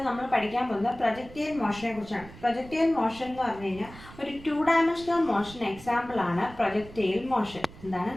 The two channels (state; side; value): noise; right; rumble, 18 dB below the sound